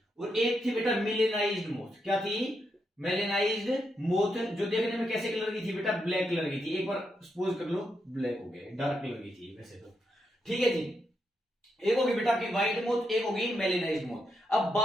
और एक थी बेटा मेलेनाइज्ड मौत। क्या थी, मेलेनाइज्ड मौत, जो देखने में कैसे कलर की थी बेटा, ब्लैक कलर की थी। एक बार सपोज कर लो ब्लैक हो गया, डार्क कलर की थी वैसे तो, ठीक है जी। एक होगी बेटा आपकी व्हाइट मौत, एक होगी मेलेनाइज्ड मौत। अब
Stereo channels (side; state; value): both; normal; correlation 0.82